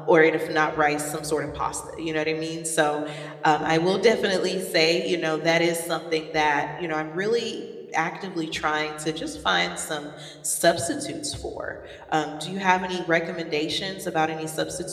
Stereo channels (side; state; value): both; identical; correlation 1.00